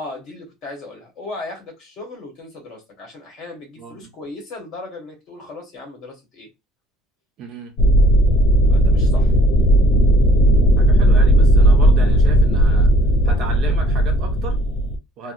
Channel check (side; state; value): both; normal; correlation 0.58